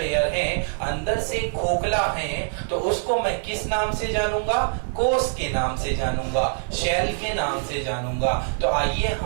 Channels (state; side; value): silent; left; 62 dB below the other